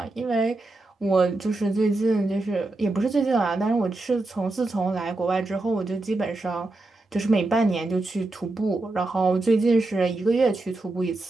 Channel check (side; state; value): left; quieter; 3.0 dB